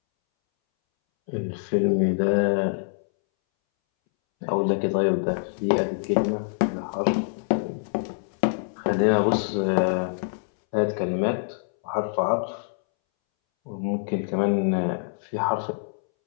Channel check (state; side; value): silent; right; 62 dB below the other